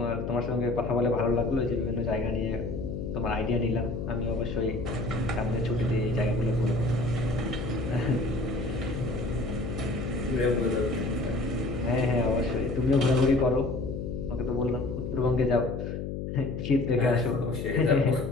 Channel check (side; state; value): left; noise; hum, 5 dB below the sound